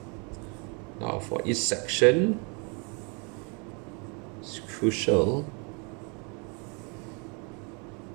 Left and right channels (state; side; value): quieter; left; 34.1 dB